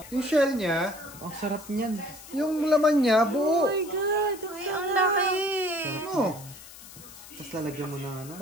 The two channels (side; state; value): left; noise; hiss, 17 dB below the sound